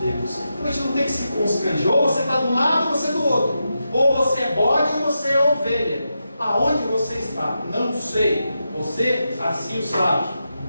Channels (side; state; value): both; inverted; correlation -0.88